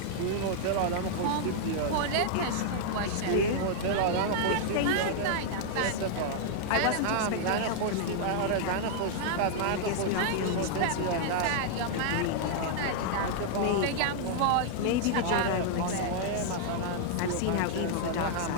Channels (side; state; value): both; different; correlation -0.01